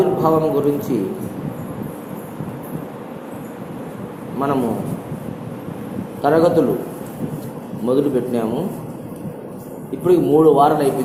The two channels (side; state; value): both; identical; correlation 1.00